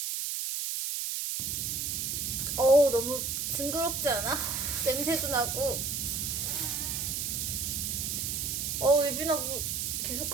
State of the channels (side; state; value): right; noise; hiss, 1 dB below the sound